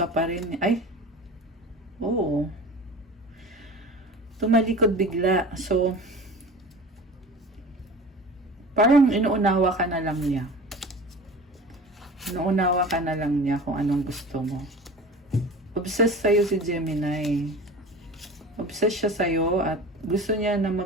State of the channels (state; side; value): normal; both; correlation 0.37